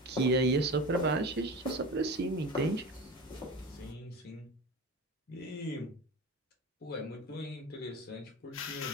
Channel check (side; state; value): both; normal; correlation 0.30